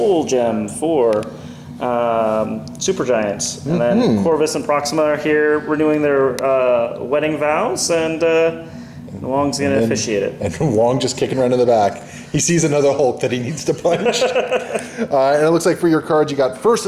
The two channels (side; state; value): both; identical; correlation 1.00